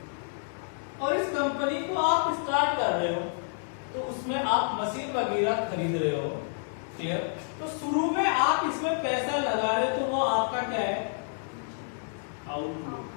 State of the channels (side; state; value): right; silent; digital silence